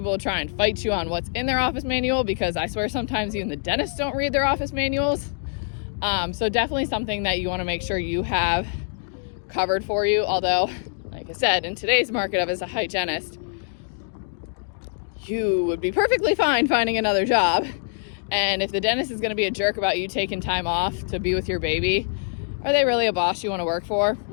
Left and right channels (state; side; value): silent; right; digital silence